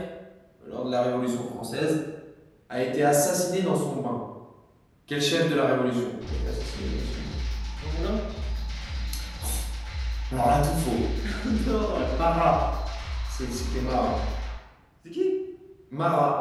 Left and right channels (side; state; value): both; identical; correlation 1.00